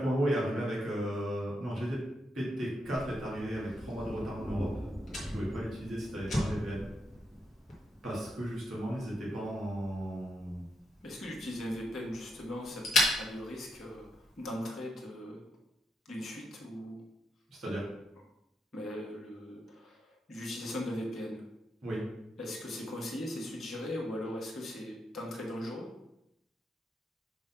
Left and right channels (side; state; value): both; normal; correlation 0.81